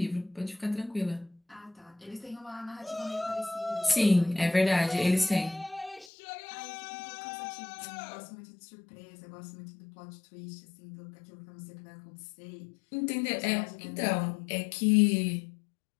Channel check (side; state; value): right; drops out; at 6.1 s